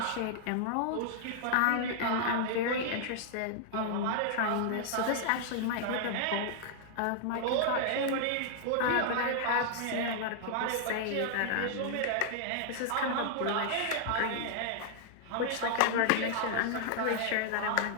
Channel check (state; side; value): different; both; correlation -0.01